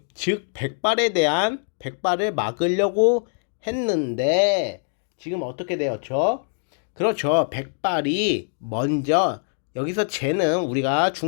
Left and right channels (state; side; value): silent; right; digital silence